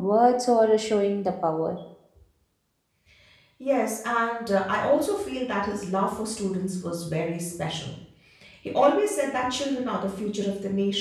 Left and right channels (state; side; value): identical; both; correlation 1.00